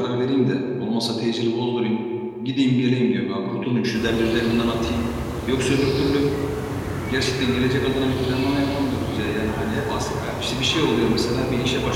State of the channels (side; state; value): both; identical; correlation 1.00